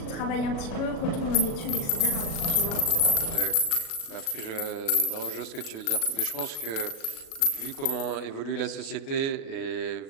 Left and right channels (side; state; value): right; late; 37 ms